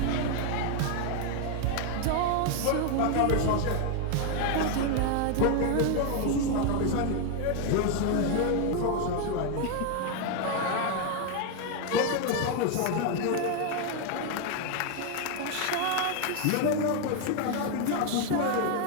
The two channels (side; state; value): both; different; correlation 0.01